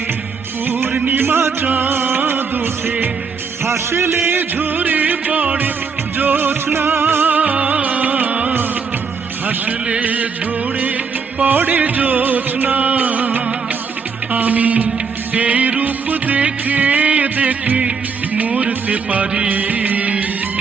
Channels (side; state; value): left; quieter; 5.5 dB